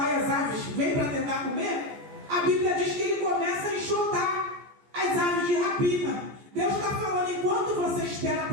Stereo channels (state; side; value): late; left; 14 ms